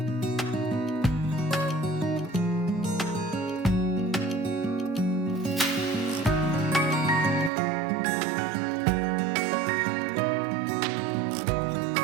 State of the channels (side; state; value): left; drops out; at 7.5 s